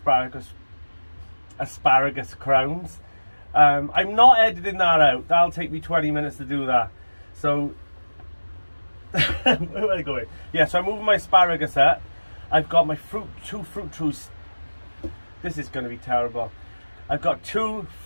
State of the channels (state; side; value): inverted; both; correlation -1.00